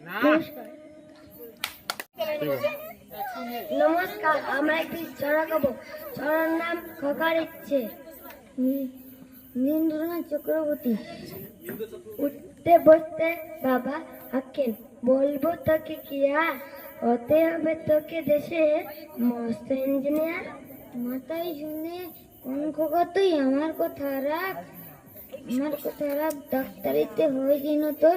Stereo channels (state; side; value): identical; both; correlation 1.00